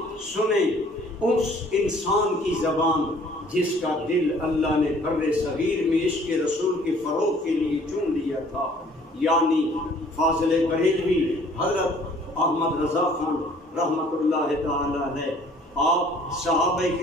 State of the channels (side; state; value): both; normal; correlation 0.55